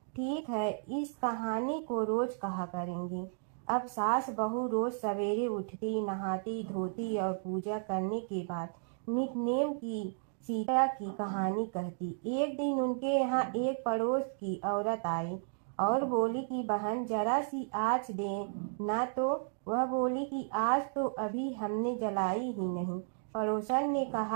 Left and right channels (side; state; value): left; silent; digital silence